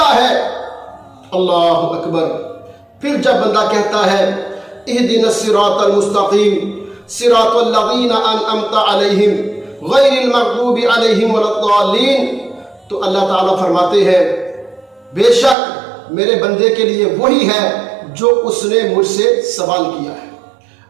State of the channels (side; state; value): left; drops out; at 15.6 s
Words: ہے۔ اللہ اکبر۔ پھر جب بندہ کہتا ہے اہدنا الصراط المستقیم صراط الذین انعمت علیہم غیر المغضوب علیہم ولا الضالین، تو اللہ تعالیٰ فرماتے ہیں بے شک میرے بندے کے لیے وہی ہے جو اس نے مجھ سے سوال کیا ہے۔